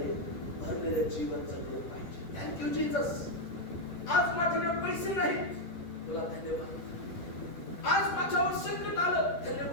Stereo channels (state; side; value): late; right; 10 ms